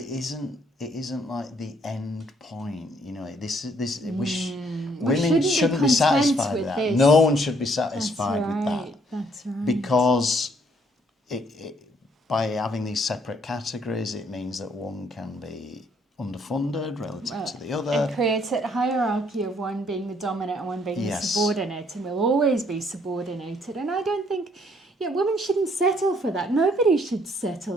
isn't like the end point. You know, women shouldn't be satisfied with that. This. No one should be satisfied with that. That's right. Because by having these separate categories, it means that one can be underfunded relative to the other. It creates a hierarchy of one being the dominant and one being the subordinate, and will always be subordinated. And I don't think, women shouldn't settle for that. Nobody should settle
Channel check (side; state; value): both; normal; correlation 0.66